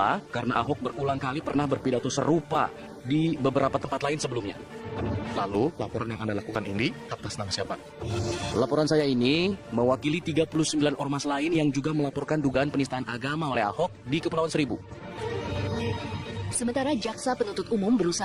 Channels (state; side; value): identical; both; correlation 1.00